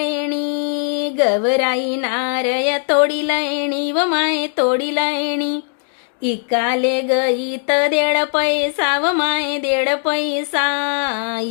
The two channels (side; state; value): right; silent; 61 dB below the other